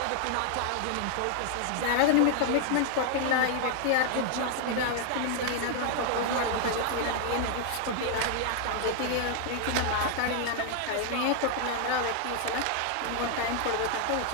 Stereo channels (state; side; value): different; both; correlation 0.00